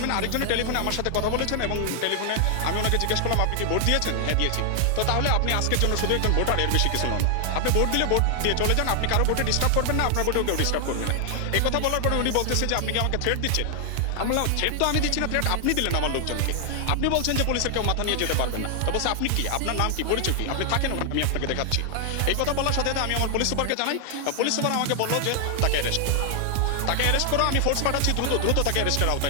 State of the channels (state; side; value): different; both; correlation 0.00